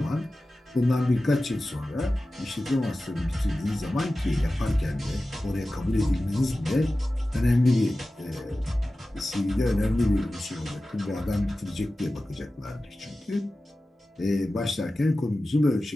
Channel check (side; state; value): both; normal; correlation 0.95